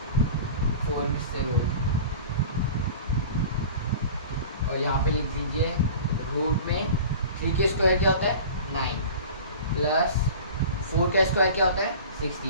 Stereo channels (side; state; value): both; inverted; correlation -0.38